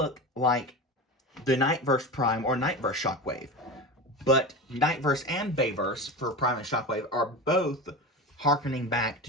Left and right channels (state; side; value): normal; both; correlation 0.26